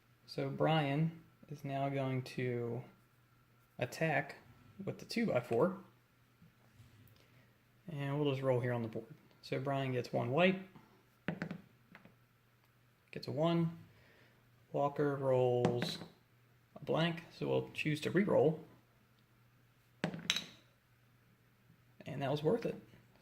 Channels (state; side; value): identical; both; correlation 1.00